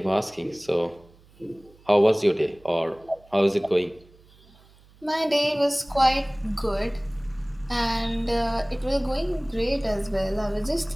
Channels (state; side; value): noise; right; hum, 27 dB below the sound